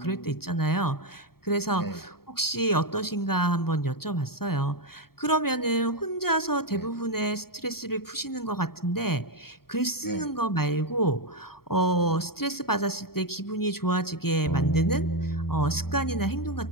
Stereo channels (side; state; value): right; late; 0.94 ms